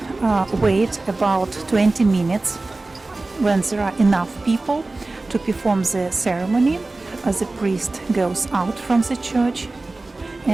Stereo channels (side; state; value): left; quieter; 3.2 dB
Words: wait about 20 minutes. When there are enough people to perform the ceremony, the priest goes out from the church